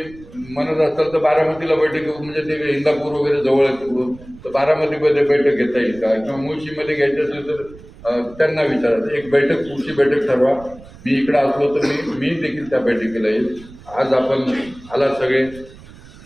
म्हणत असाल तर बारामतीला बैठक घेऊ, म्हणजे ते इंदापूर वगैरे जवळ आहे तिकडून, तर बारामतीमध्ये बैठक घेता येईल का, किंवा मुळशीमध्ये घ्यायची असेल तर त्यांना विचारायचं. एक बैठक पुढची बैठक ठरवा. मी इकडं असलो तर मी देखील त्या बैठकीला येईल. आज आपण आला सगळे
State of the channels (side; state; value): right; noise; rumble, 20 dB below the sound